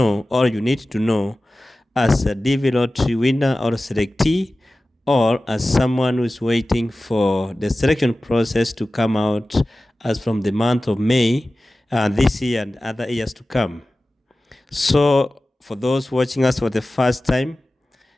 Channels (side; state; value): both; normal; correlation 0.96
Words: or you need to know as a DV lottery winner or a selectee, or as someone who is waiting for the selection process to come out as from the month of May this year and other years to come. So for those watching us for the first time,